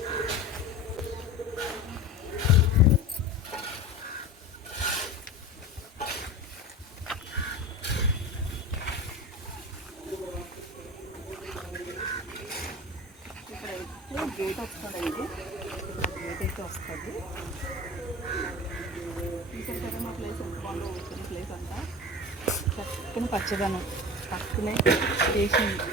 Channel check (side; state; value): both; normal; correlation 0.32